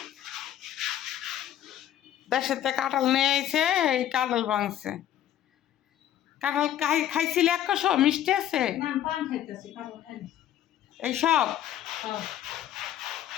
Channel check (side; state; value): right; quieter; 11.6 dB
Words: দেশেতে কাঁঠাল নিয়ে আইছে, এই কাঁঠাল ভাঙছে। কাঁঠাল খাইছিলে 100 মিষ্টি আছে এইসব,